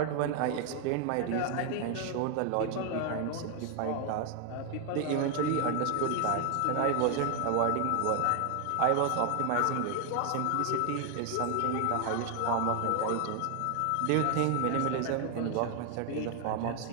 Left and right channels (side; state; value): both; different; correlation 0.00